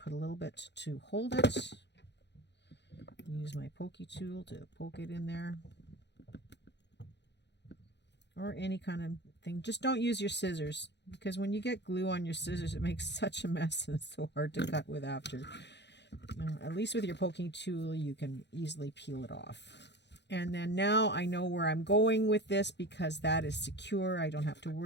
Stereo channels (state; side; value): late; right; 0.50 ms